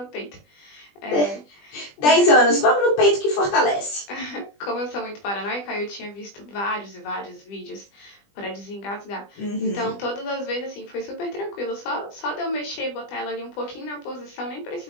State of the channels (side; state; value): right; late; 20 ms